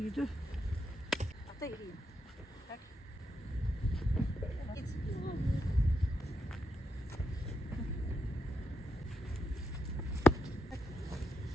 عطيه ليا هاك.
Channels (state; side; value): normal; both; correlation 0.82